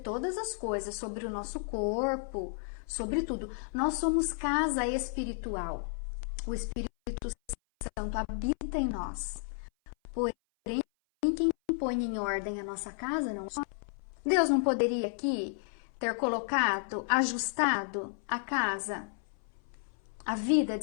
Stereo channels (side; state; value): right; silent; 56 dB below the other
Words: as coisas, sobre o nosso corpo, sobre tudo. Nós somos casa espiritual. O Espírito Santo habita em nós. Porém, quem põe em ordem a nossa casa não é. Deus não poderia aqui ter colocado, ajustado a casa, a vida